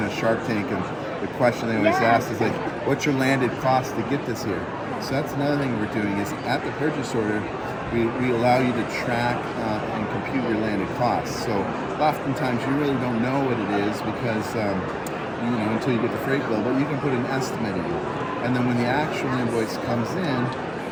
of Shark Tank, and the question they always ask is like, what's your landed cost to get this here? So that's another thing we're doing is at the purchase order, we allow you to track and compute your landed costs. So oftentimes you really don't know what it is because, until you get the freight bill, but you can put an estimate in. And then when the actual invoice comes in,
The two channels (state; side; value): identical; both; correlation 1.00